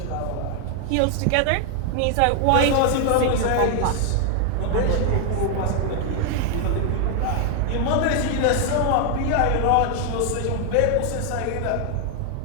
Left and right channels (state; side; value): different; both; correlation 0.00